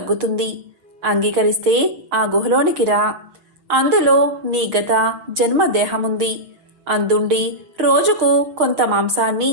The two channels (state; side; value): late; left; 6.6 ms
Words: అంగీకరిస్తే ఆ గుహలోనికి రా. అందులో నీ గత జన్మ దేహముంది. అందుండి రోజుకు కొంత మాంసాన్ని